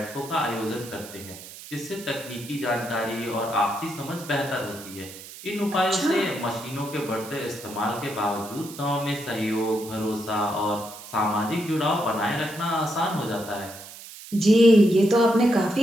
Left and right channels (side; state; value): right; noise; hiss, 15 dB below the sound